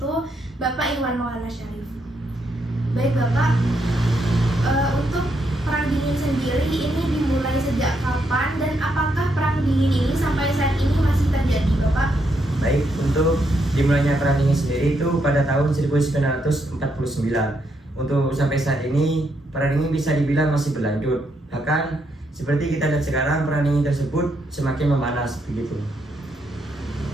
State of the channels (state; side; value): normal; both; correlation 0.78